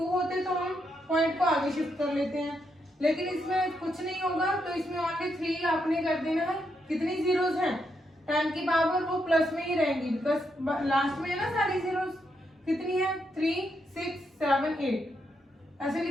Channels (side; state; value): both; normal; correlation 0.80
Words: होते तो हम पॉइंट को आगे शिफ्ट कर लेते हैं, लेकिन इसमें कुछ नहीं होगा, तो इसमें ओनली 3 आपने कर देना है। कितनी जीरोस हैं 10 की पावर वो प्लस में ही रहेंगी, बिकॉज लास्ट में है ना सारी जीरोस। कितनी है 3 6 7 8 ऐसे